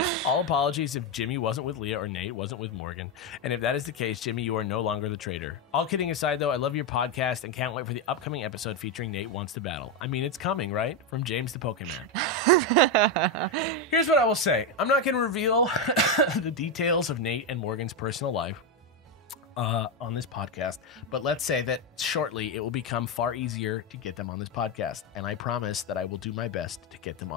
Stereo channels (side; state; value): both; normal; correlation 0.07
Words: All apologies if Jimmy wasn't with Leah or Nate wasn't with Morgan. And if that is the case, Jimmy, you are no longer the traitor. All kidding aside, though, I love your podcast and can't wait for the upcoming episode featuring Nate Wants to Battle. I mean, it's coming, right? From James the Pokemon. Here's what I will say. I'm not going to reveal the details of Nate and Morgan's personal life on this podcast, but let's say that shortly it will become far easier to get them on this podcast, and I promise that I will do my best to get them